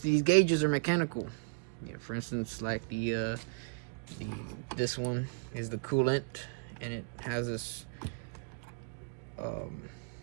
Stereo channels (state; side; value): quieter; left; 35.3 dB